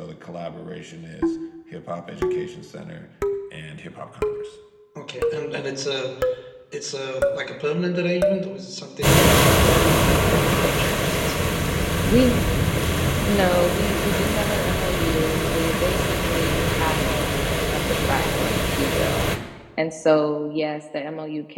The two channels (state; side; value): identical; both; correlation 1.00